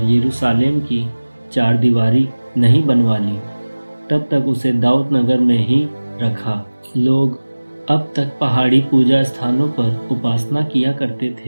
यरूशलेम की चारदीवारी नहीं बनवा ली, तब तक उसे दाऊद नगर में ही रखा। लोग अब तक पहाड़ी पूजा स्थानों पर उपासना किया करते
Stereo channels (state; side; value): inverted; both; correlation -1.00